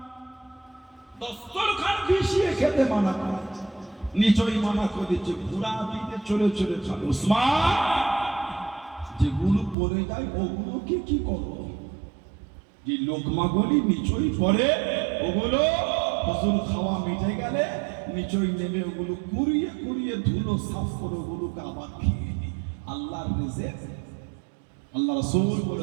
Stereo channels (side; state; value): left; drops out; at 9.8 s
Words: দস্তরখান বিছিয়ে খেতে মানা করেছে, নিচই মানা করে দিচ্ছে, ঘোড়া পিঠে চলে চলে খাবে। ওসমান যেগুলো পড়ে যায় ওগুলোকে কি করো? যে লোকমাগুলি নিচই পড়ে ওগুলো হুজুর খাওয়া মিটে গেলে নিচই নেমে ওগুলো কুড়িয়ে কুড়িয়ে ধুলো সাফ করে ওগুলোকে আবার খেয়ে নি। আল্লাহর রিজিক আল্লাহ রাসূল